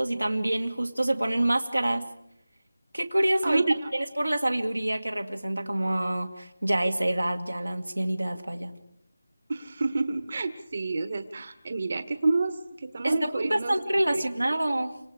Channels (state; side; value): inverted; both; correlation -0.98